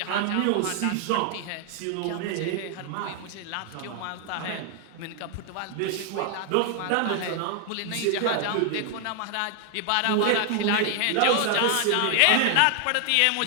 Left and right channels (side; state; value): both; different; correlation 0.00